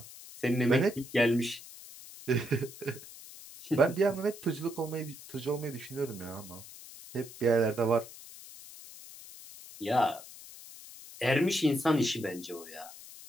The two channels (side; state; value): left; noise; hiss, 16 dB below the sound